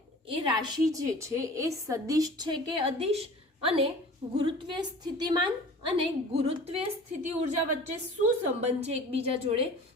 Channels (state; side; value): normal; both; correlation 0.42